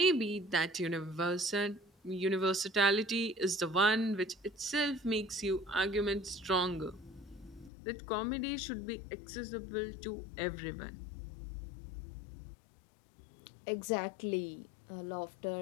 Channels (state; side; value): drops out; right; at 7.7 s